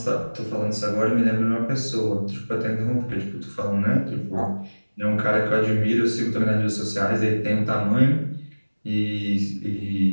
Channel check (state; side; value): inverted; both; correlation -1.00